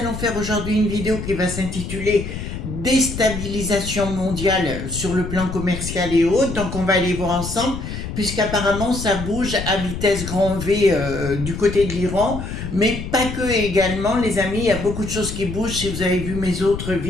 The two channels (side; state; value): left; noise; rumble, 7 dB below the sound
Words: faire aujourd'hui une vidéo qui va s'intituler déstabilisation mondiale sur le plan commercial et autres. Donc on va aller voir ensemble, puisqu'apparemment ça bouge à vitesse grand V du côté de l'Iran, mais pas que également les amis, il y a beaucoup de choses qui bougent si vous avez vu mes autres